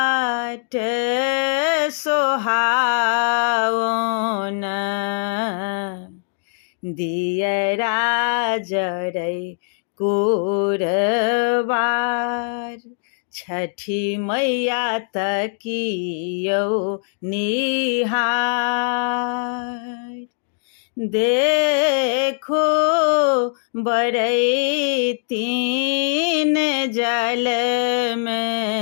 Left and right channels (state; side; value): silent; right; digital silence